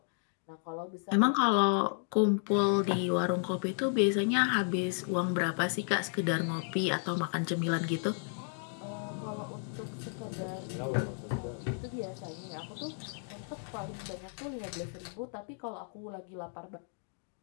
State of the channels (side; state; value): right; silent; 56 dB below the other